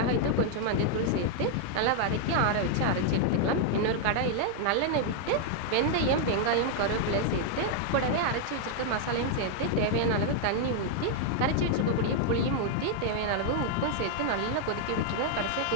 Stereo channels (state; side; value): different; both; correlation 0.00